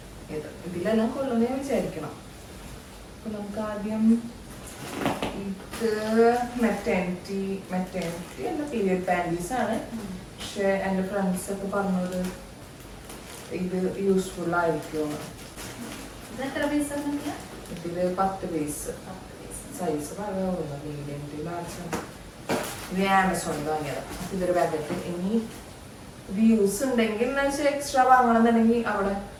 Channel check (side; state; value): both; identical; correlation 1.00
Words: ഇതിലെല്ലാം കൊള്ളുന്ന ഞാൻ വിചാരിക്കണം. അപ്പൊ നമുക്ക് ആദ്യം ഇത് മെറ്റേണിറ്റി അല്ല, പീരിയഡ് പാൻറ്റീസ് ആണ്. പക്ഷെ എൻ്റെ ഫ്രണ്ട്സ് ഒക്കെ പറഞ്ഞത് ഇത് യൂസ്ഫുൾ ആയിരിക്കും. ഇതില് 10 പീസ് സൈസ് പറയാവുന്ന മീഡിയം ടു ലാർജ്. ഇത് ആമസോണിൽ വാങ്ങിയതാണ്. ഇതൊരു പാക്കറ്റ്. ഇനി ഇത് യൂസ് ഉണ്ടെങ്കിൽ എക്സ്ട്രാ വാങ്ങണമെന്നുണ്ടെങ്കിൽ അവിടെ